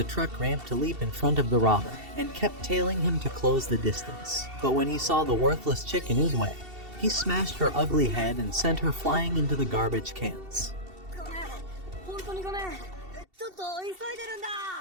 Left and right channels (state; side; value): late; left; 2.7 ms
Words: truck ramp to leap in front of the robber, and kept tailing him to close the distance. But when he saw the worthless chick in his way, he smashed her ugly head and sent her flying into the garbage cans.